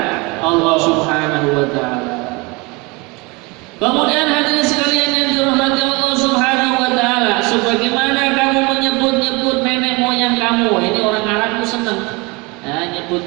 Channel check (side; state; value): left; quieter; 26.6 dB